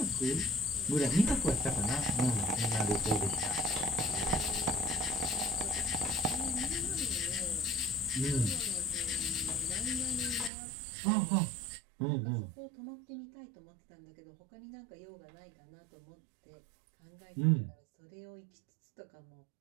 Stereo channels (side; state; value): left; drops out; at 10.5 s